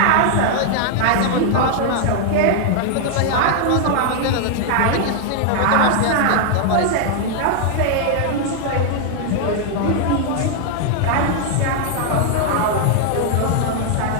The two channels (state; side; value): different; both; correlation 0.00